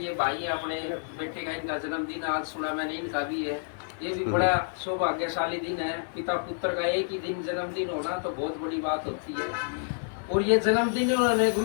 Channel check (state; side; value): silent; right; digital silence